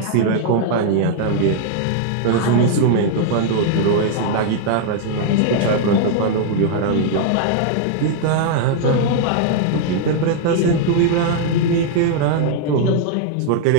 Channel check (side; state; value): both; different; correlation -0.01